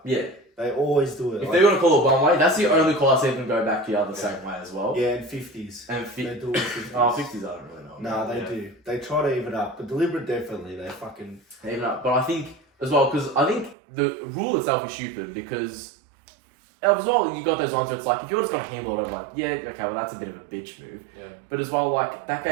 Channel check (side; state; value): left; drops out; at 13.8 s